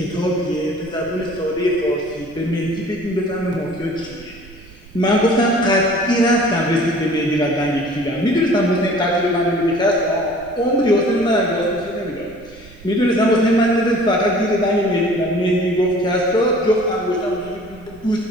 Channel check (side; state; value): right; noise; rumble, 22 dB below the sound